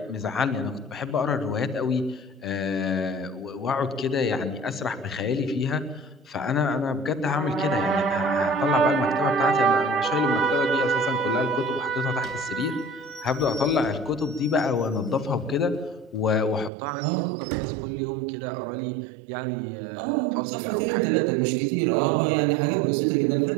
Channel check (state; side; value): drops out; left; at 16.7 s